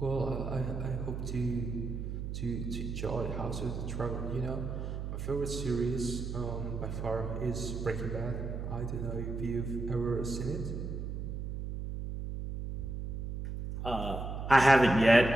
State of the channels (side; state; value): right; noise; hum, 5 dB below the sound